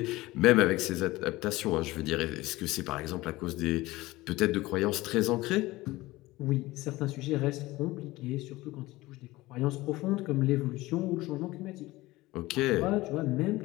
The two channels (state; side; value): quieter; right; 19.2 dB